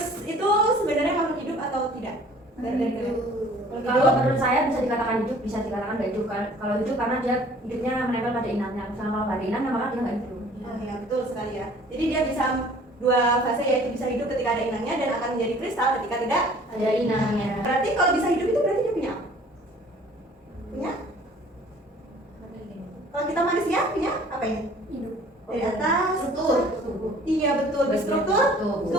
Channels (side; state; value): both; normal; correlation 0.52